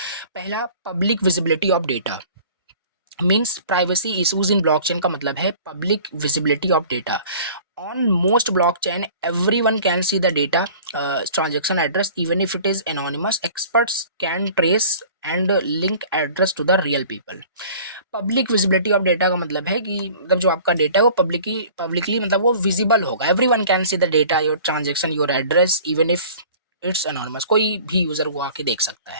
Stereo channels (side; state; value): both; inverted; correlation -0.46